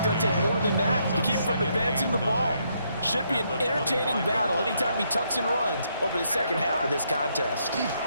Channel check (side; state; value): both; inverted; correlation -0.75